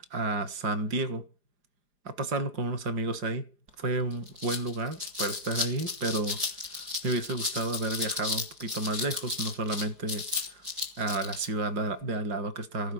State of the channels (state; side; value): late; left; 4.9 ms